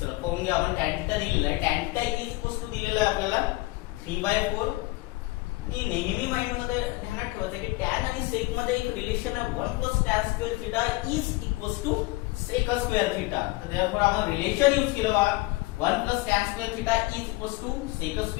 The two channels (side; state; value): right; quieter; 21.7 dB